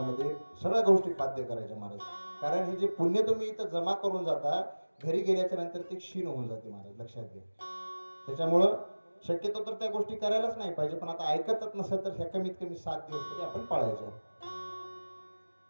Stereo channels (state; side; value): inverted; both; correlation -1.00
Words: सगळ्या गोष्टी बाध्य करायच्या महाराज. कारण हे जे पुण्य तुम्ही इथं जमा करून जाता घरी गेल्याच्या नंतर ते क्षीण होऊन जाते महाराज, लक्षात घ्या. त्याच्यामुळं शक्यतो तर त्या गोष्टी करायलाच नाही पाहिजे. पण आता ऐकतच नसेल तर ह्या कमीत कमी 7 दिवस तरी आपण पाळायच्या.